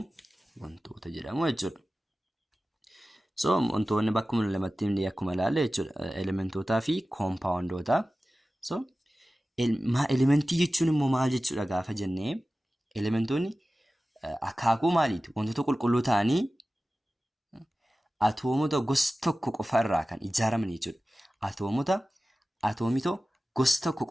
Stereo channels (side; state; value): both; normal; correlation 0.96